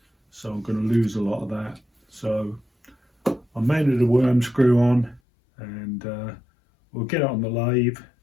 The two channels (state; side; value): drops out; right; at 5.2 s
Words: so I'm going to lose a lot of that. So I mounted a worm screw on, and we'll get it on the lathe